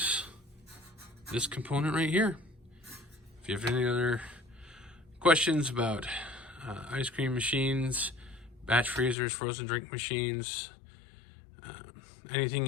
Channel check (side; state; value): right; drops out; at 9.2 s